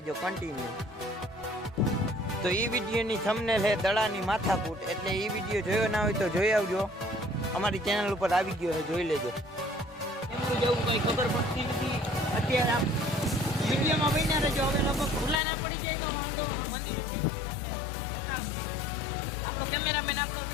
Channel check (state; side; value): drops out; right; at 15.4 s